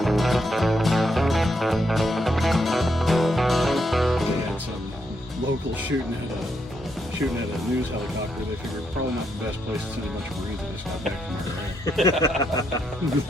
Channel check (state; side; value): normal; both; correlation 0.79